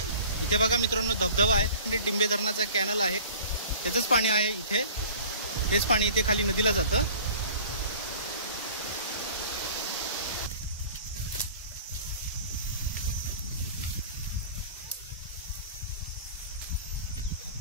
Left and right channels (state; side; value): inverted; both; correlation -0.45